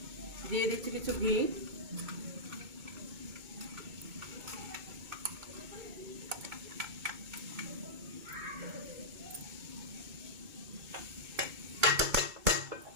দিয়ে দিচ্ছি কিছু ঘি।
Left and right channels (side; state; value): left; late; 2.2 ms